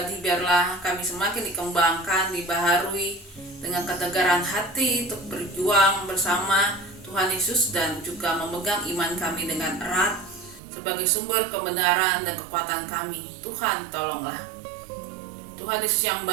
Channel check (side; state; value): left; drops out; at 10.6 s